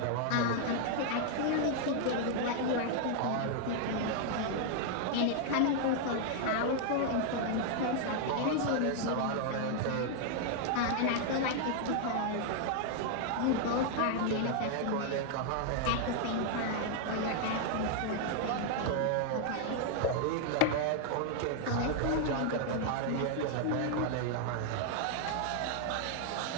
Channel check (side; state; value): both; different; correlation 0.00